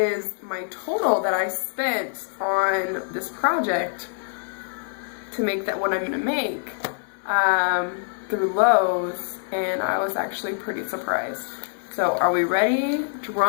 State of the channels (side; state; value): right; silent; digital silence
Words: my total that I spent on this project to make that what I'm going to make through Lowe's. And I was actually pretty surprised. So are we ready?